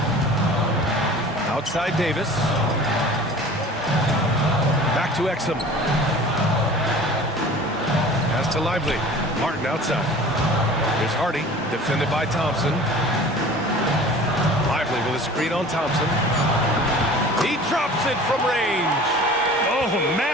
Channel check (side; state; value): both; normal; correlation 0.43